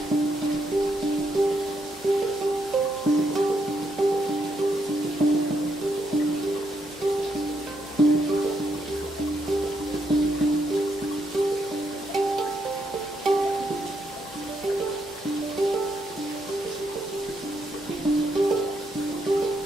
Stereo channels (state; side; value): normal; both; correlation 0.78